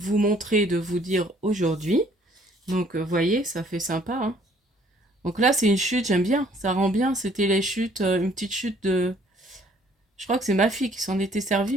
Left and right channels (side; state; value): both; normal; correlation 0.60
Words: montrer, de vous dire aujourd'hui. Donc, vous voyez, ça fait sympa, hein. Donc là, c'est une chute, j'aime bien, ça rend bien. C'était les chutes, une petite chute de... Je crois que c'est ma fille qui s'en était